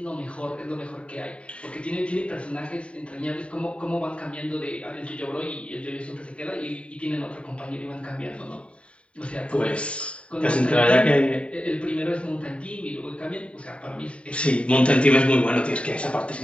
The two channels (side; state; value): right; late; 0.061 ms